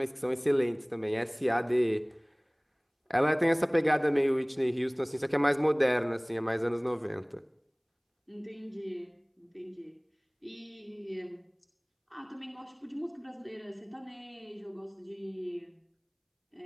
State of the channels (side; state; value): both; identical; correlation 1.00